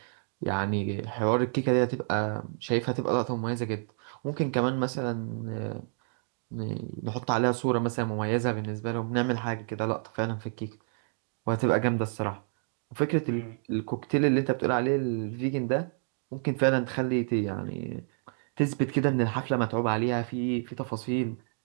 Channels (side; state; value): left; silent; digital silence